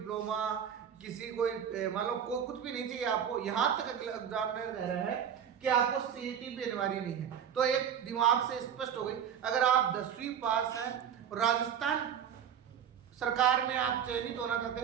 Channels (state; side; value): quieter; left; 8.7 dB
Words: किसी कोई मान लो कुछ भी नहीं चाहिए आपको। यहाँ तक एग्जामिनर कह रहे हैं कि आपको सीईटी भी अनिवार्य नहीं है। तो एक दिमाग से स्पष्ट हो गई, अगर आप 10वीं पास हैं और राजस्थान सरकार में आप चयनित होना चाहते